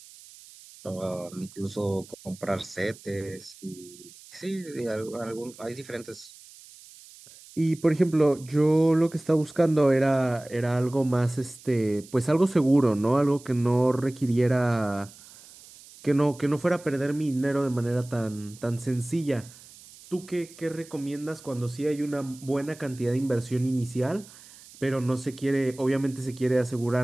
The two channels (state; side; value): noise; right; hiss, 21 dB below the sound